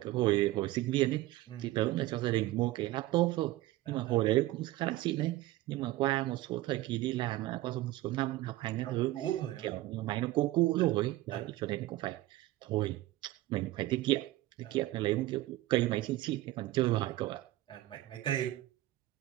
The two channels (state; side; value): quieter; left; 16.9 dB